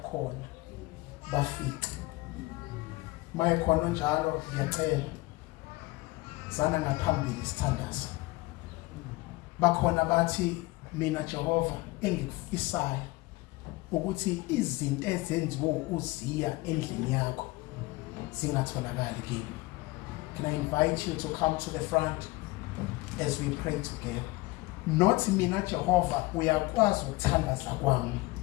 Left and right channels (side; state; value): right; quieter; 21.2 dB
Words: bafike mayekhona njalo ngiyacela sana ngaphambili sithandaza bakhona bathi mina Jehova engikufisayo ukuthi izinto ezenziwe uziya endlini yakho zingatholakali kimi. Can I invite you to come to the front as we pray together? Not mina Jehova uyakwazi ukuthandaza kwami.